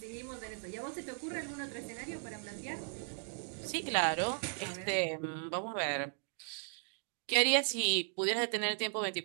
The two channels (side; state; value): left; silent; 53 dB below the other